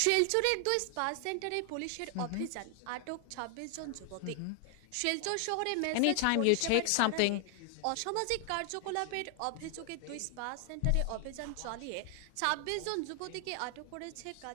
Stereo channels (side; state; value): both; different; correlation 0.00